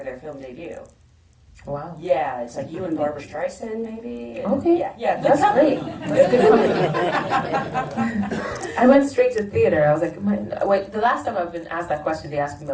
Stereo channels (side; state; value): both; identical; correlation 1.00